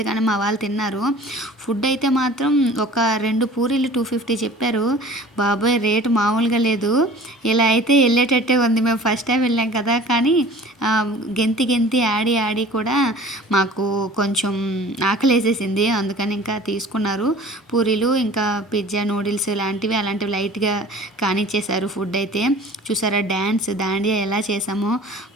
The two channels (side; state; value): both; normal; correlation 0.45